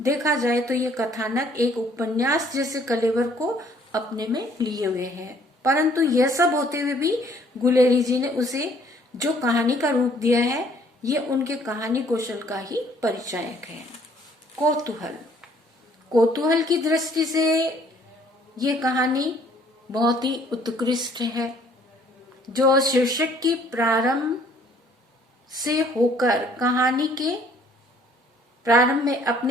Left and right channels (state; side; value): normal; both; correlation 0.60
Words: देखा जाए तो ये कथानक एक उपन्यास जैसे कलेवर को अपने में लिए हुए है। परंतु यह सब होते हुए भी गुलेरी जी ने उसे जो कहानी का रूप दिया है, ये उनके कहानी कौशल का ही परिचायक है। कौतूहल की दृष्टि से ये कहानी बहुत ही उत्कृष्ट है, जो शीर्षक की प्रारंभ से होकर कहानी के प्रारंभ में